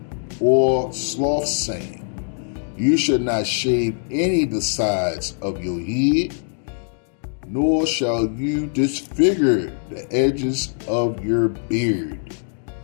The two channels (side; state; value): right; silent; 64 dB below the other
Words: or sloth saying. You shall not shave any of the sides of your head. nor shall you disfigure the edges of your beard.